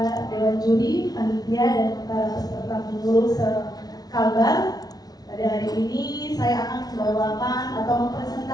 Dewan Juri, panitia dan para peserta pemilu sekalbar. Pada hari ini saya akan membawakan atau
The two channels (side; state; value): right; late; 0.19 ms